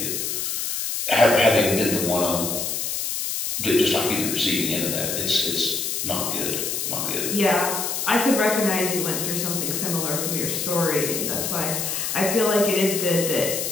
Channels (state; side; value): noise; left; hiss, 2 dB below the sound